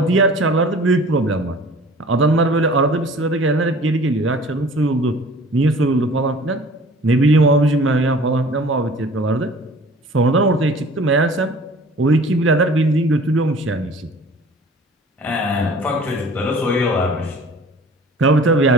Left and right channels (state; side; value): normal; both; correlation 0.47